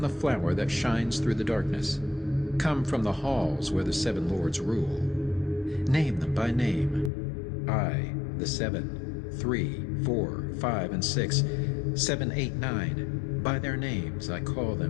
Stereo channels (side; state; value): right; drops out; at 7.1 s